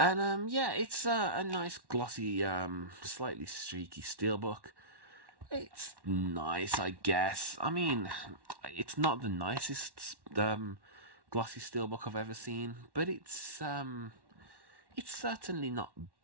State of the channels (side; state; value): left; late; 1.1 ms